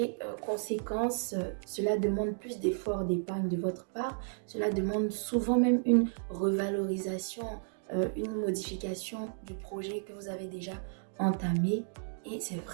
conséquence, cela demande plus d'efforts d'épargne de votre part. Cela demande souvent même une revalorisation, une modification du projet que vous avez déjà entamé. Et c'est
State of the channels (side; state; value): left; silent; digital silence